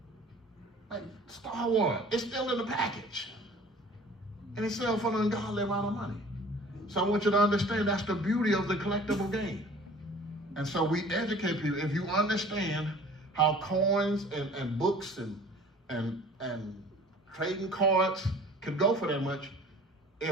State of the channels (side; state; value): both; normal; correlation 0.47